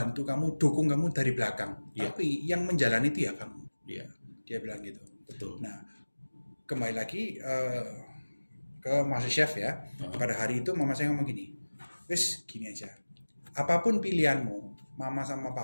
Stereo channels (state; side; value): inverted; both; correlation -1.00